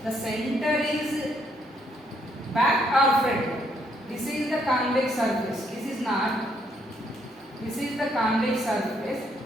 the center is back or front. This is the convex surface. This is not. This is the convex surface.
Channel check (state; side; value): normal; both; correlation 0.72